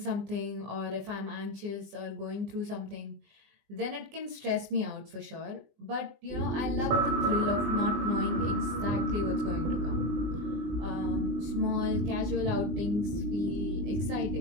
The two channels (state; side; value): late; left; 19 ms